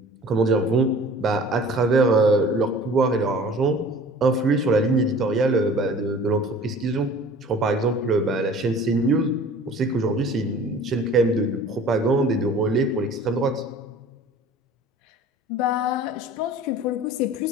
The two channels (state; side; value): normal; both; correlation 0.46